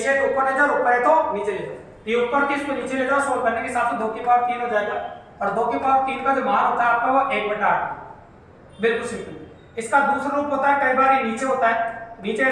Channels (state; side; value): identical; both; correlation 1.00